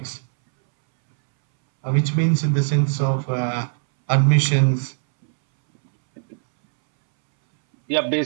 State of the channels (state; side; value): silent; left; 66 dB below the other